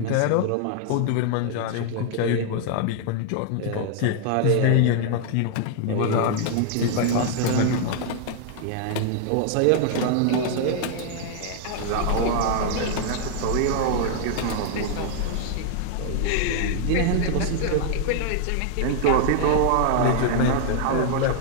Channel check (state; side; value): different; both; correlation 0.00